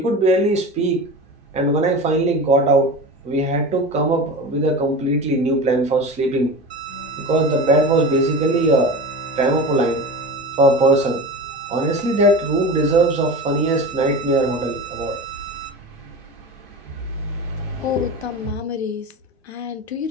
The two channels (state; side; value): normal; both; correlation 0.30